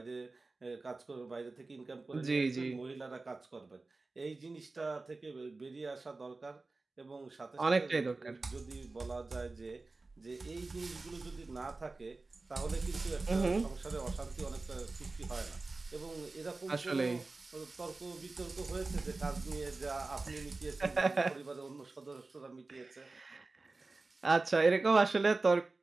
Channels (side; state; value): left; quieter; 3.5 dB